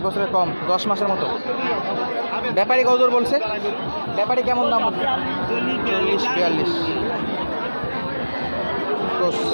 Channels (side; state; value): both; inverted; correlation -1.00